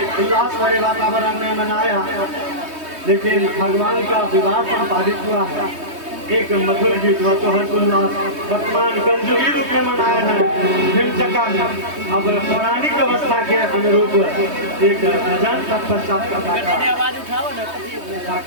उल्लास भरे वातावरण में मनाया, लेकिन भगवान का विवाह संपादित हुआ है एक मधुर गीत व तो हर्षोल्लास वर्तमान कंजुगी रूप में मनाया है हिमचक्का में। अब पौराणिक अवस्था के अनुरूप एक भजन तत्पश्चात का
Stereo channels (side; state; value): left; late; 3.2 ms